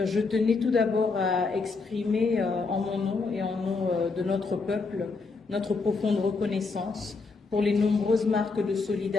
je tenais tout d'abord à exprimer en mon nom et en nom de notre peuple notre profonde reconnaissance pour les nombreuses marques de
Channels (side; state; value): right; quieter; 4.2 dB